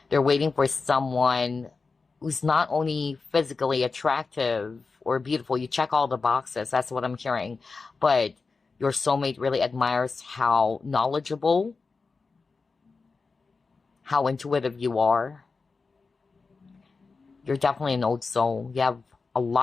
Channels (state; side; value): quieter; right; 4.4 dB